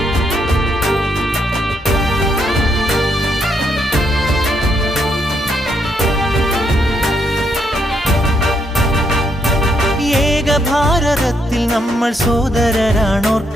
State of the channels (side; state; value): both; normal; correlation 0.76